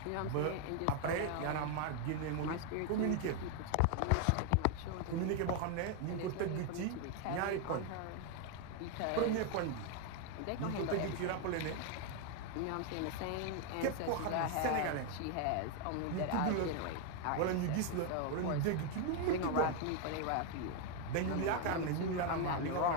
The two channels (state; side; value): different; both; correlation 0.01